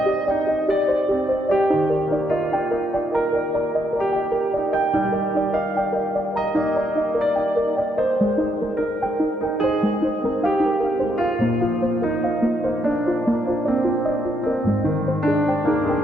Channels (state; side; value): normal; both; correlation 0.76